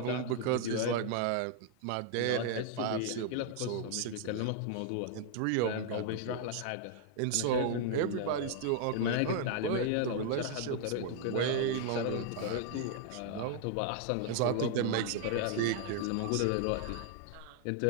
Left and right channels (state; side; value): different; both; correlation -0.01